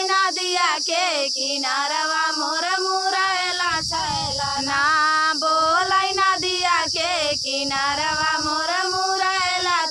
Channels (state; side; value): identical; both; correlation 1.00